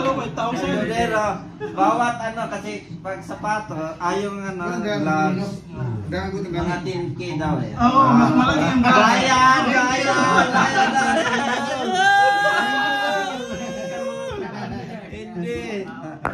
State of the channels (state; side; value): identical; both; correlation 1.00